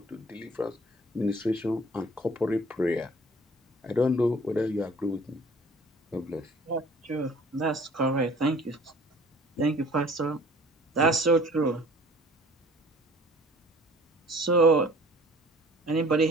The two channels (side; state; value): both; normal; correlation 0.50